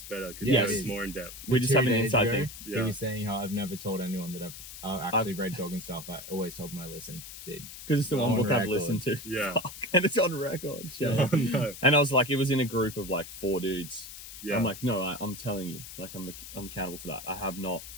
better because Yes. it's more in depth. We just have an 2 days inside ago, thing. He Yeah. was saying how I've never told anyone that I've actually read Goggins stuff. I always told them I listened. Did. Because it's the one On book I've record. listened to. Yeah. Fuck. And it's on record. Shut Oh, up. no. And I was like, it was in a group of like 4 dudes. Yeah. I'm like, no, I'm telling you, like I'm accountable for that. I have not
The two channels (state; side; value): noise; left; hiss, 12 dB below the sound